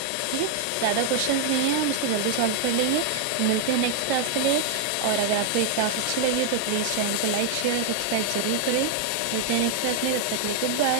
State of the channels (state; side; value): different; both; correlation 0.00